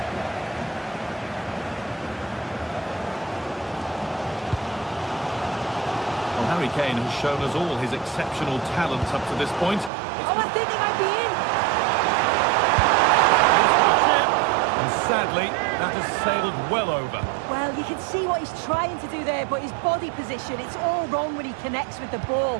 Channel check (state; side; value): drops out; left; at 9.9 s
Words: Harry Kane has shown us all his exceptional talents up to this point. Oh, I think he might be in. And sadly, that has sailed well over. Well, you can see what he's trying to do there, but his body position, it's all wrong when he connects with the